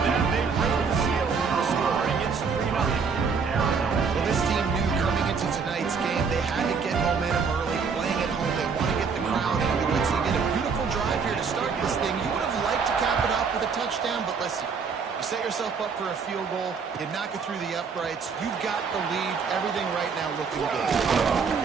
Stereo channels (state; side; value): quieter; left; 5.6 dB